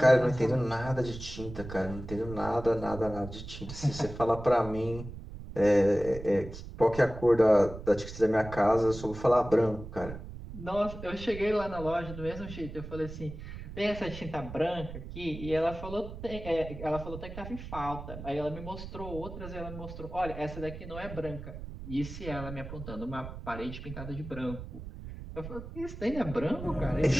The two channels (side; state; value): right; noise; rumble, 11 dB below the sound